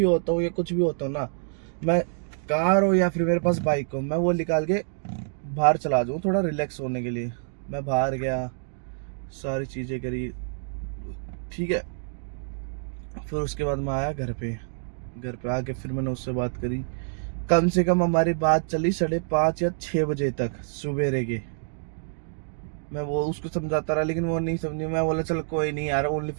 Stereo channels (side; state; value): left; silent; digital silence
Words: होता हूँ या कुछ भी होता हूँ ना, मैं कार हो या फिर मेरे पास बाइक हो, मैं वो निकाल के बाहर चला जाऊँ थोड़ा रिलैक्स होने के लिए। मैं बाहर गया, सारी चीज़ें करी, ठीक है। फिर उसके बाद मैं आया घर पे। घर पे आके फिर मैंने उससे बात करी। कम से कम हमारी बात चली 5:30 या 6 बजे तक सवेरे के। मैं वो उसको समझाता रहा, लेकिन वो नहीं समझी। मैं बोला चल कोई नहीं यार, ओनली